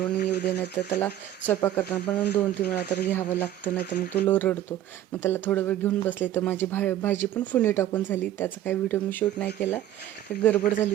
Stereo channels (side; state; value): left; quieter; 12.4 dB